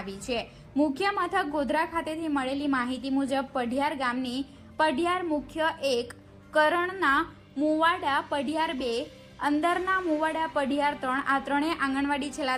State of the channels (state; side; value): identical; both; correlation 1.00